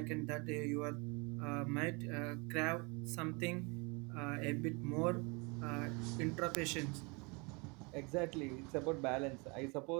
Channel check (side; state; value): left; quieter; 29.5 dB